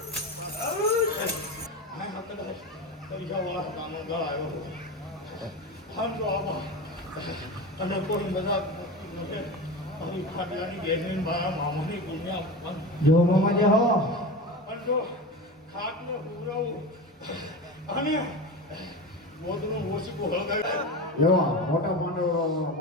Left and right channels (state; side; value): normal; both; correlation 0.26